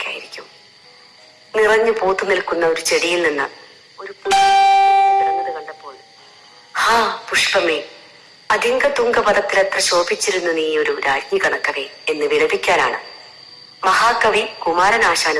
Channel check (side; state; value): both; identical; correlation 1.00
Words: നിറഞ്ഞു പൂത്തു നിൽക്കുന്ന ഒരു ചെടിയിൽ നിന്ന് ഒരു കിടന്നത് കണ്ടപ്പോൾ ഹാ പുഷ്പമേ, അതിംഗതുംഗപദത്തിലെത്ര ശോഭിച്ചിരുന്നു നീ ഒരു രാജ്ഞി കണക്കവേ എന്ന് വിലപിക്കാനാണ് മഹാകവി